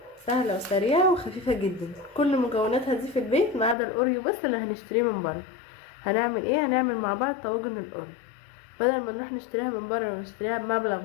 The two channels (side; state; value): right; drops out; at 3.8 s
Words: سهلة وسريعة وخفيفة جدا. كل مكوناتها دي في البيت ما عدا الاوريو بس اللي هنشتريه من بره. هنعمل ايه؟ هنعمل مع بعض طواجن الاوريو. بدل ما نروح نشتريها من بره ونشتريها بمبلغ